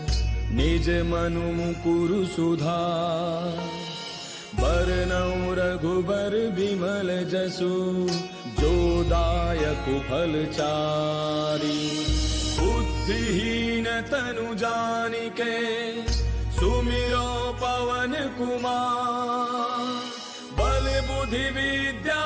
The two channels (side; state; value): both; identical; correlation 1.00